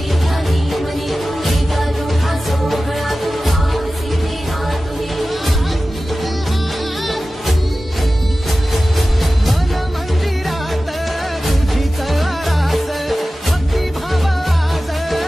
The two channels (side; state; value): both; normal; correlation 0.95